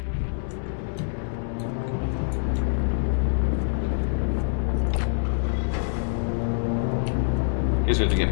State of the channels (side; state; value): right; silent; digital silence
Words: Guess we have to get